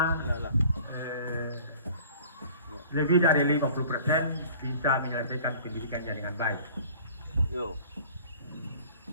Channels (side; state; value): both; inverted; correlation -0.49